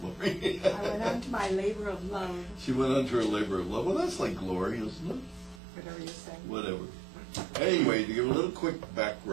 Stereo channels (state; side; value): drops out; left; at 5.6 s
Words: glory. I went on to my labor of love. She went on to her labor of love. Well, that's like glory, isn't it? Whatever you say. Whatever. Anyway, to give a little quick